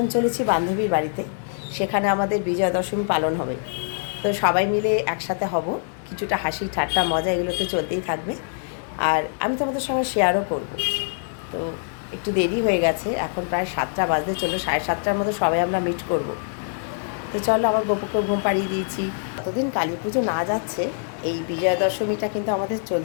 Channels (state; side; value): silent; right; digital silence